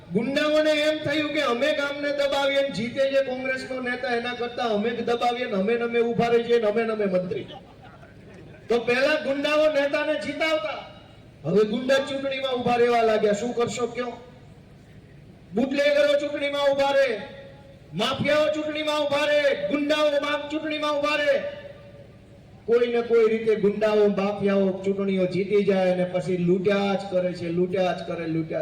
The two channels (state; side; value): identical; both; correlation 1.00